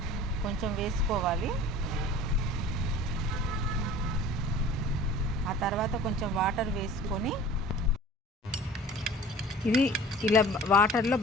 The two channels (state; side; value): normal; both; correlation 0.44